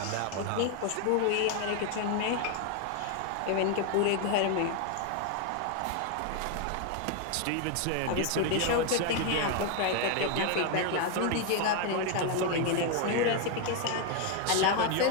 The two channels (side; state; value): both; different; correlation 0.01